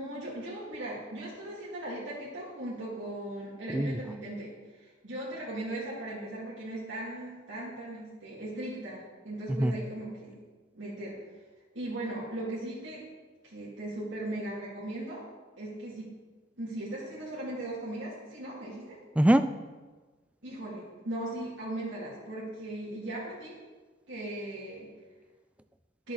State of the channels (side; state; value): both; normal; correlation 0.73